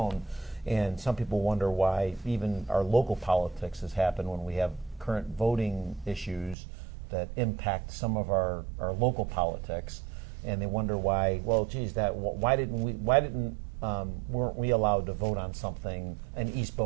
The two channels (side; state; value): left; drops out; at 6.6 s